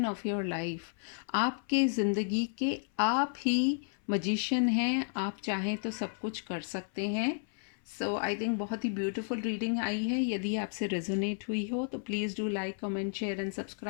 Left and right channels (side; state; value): right; silent; 56 dB below the other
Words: of your life. आपके ज़िंदगी के आप ही मजिशियन हैं। आप चाहें तो सब कुछ कर सकते हैं। सो आई थिंक बहुत ही ब्यूटीफुल रीडिंग आई है। यदि आपसे रेजोनेट हुई हो तो please do like, comment, share and